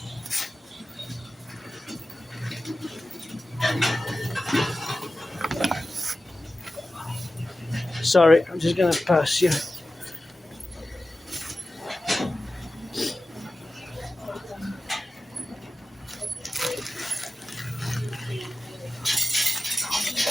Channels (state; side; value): normal; both; correlation 0.94